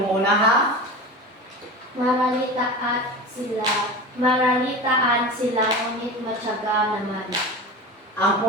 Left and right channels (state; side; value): normal; both; correlation 0.30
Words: muna ha. Maralitaan sila, ngunit matyaga naman. Ang